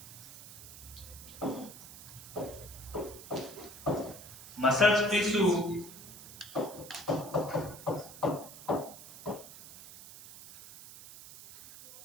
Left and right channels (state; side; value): noise; right; hiss, 15 dB below the sound